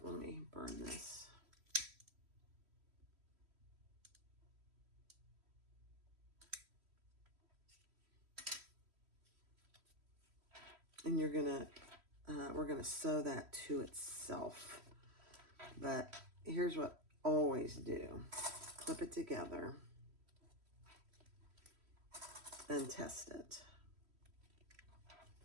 Let me burn this. And you're going to we're going to sew that to itself. But here's what I always do. Clip it together and test it.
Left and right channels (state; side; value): late; left; 3.1 ms